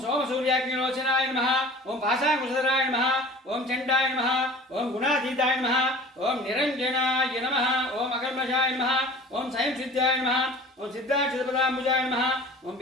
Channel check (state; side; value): normal; both; correlation 0.43